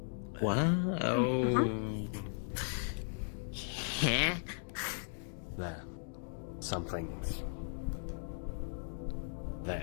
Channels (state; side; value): silent; right; digital silence